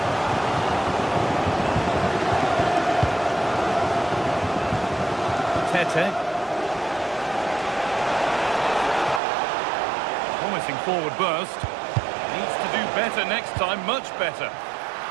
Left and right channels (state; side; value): drops out; left; at 9.2 s